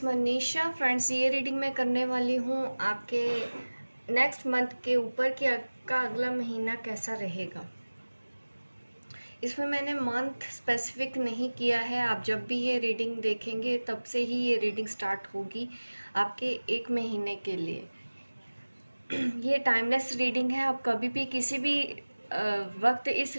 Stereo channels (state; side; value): inverted; both; correlation -1.00